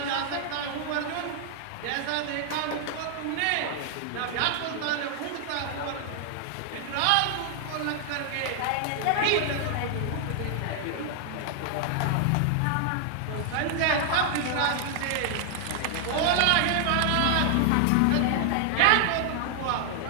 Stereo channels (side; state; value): both; different; correlation 0.00